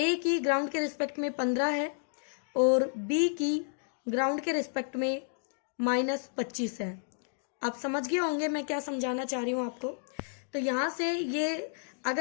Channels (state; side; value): silent; right; 57 dB below the other